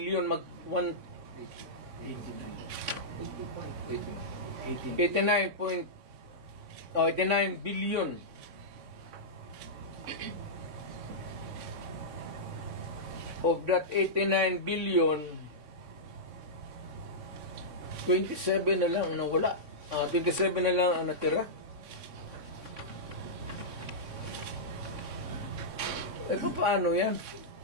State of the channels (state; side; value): late; left; 3.6 ms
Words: 89 billion. Of that 89 billion, 27 na lang ang nawala. 27 na lang ang natira. Paano yan?